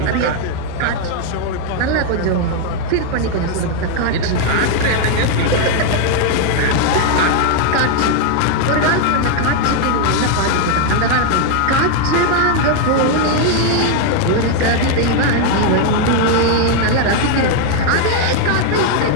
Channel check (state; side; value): different; both; correlation 0.01